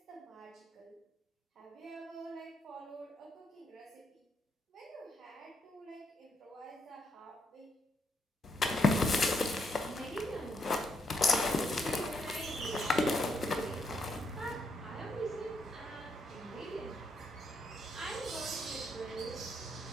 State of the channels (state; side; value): normal; both; correlation 0.76